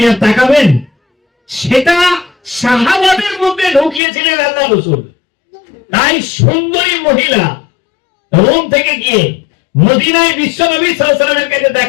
আর তাকাবেন? সেটা সাহাবাদের মধ্যে ঢুকিয়েছিলেন আল্লাহ রাসূল। তাই সুন্দরী মহিলা রোম থেকে গিয়ে মদিনায় বিশ্বনবী সাল্লাল্লাহু আলাইহি ওয়াসাল্লামের কাছে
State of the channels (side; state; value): right; drops out; at 4.0 s